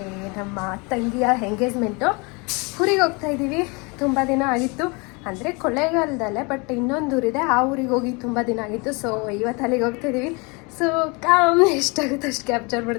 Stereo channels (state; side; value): quieter; right; 29.4 dB